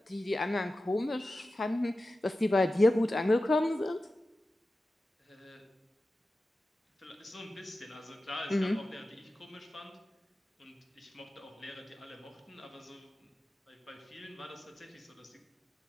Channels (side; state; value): both; normal; correlation 0.94